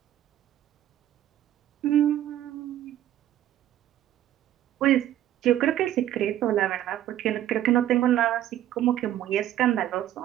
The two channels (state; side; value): quieter; left; 12.5 dB